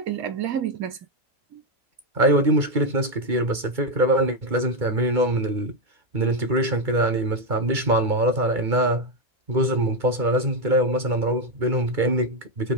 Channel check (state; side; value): late; left; 2.3 ms